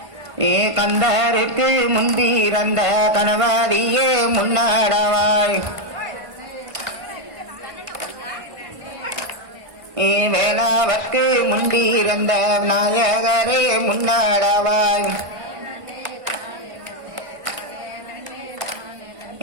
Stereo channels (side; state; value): left; late; 1.6 ms